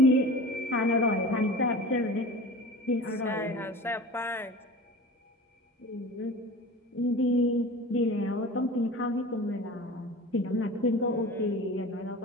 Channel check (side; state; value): both; normal; correlation 0.36